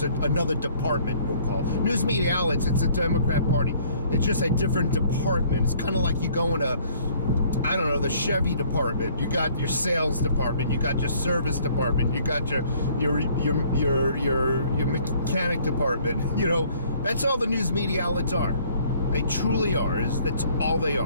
another department, we'll call it. News media outlets, it's a Democrat Party. It's just a different department. It's kind of like you go in the Chevy department. You got your sales department. You got your service department. You got your mechanic department. That's all the news media outlets are. They truly are. That's all they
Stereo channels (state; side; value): inverted; both; correlation -0.59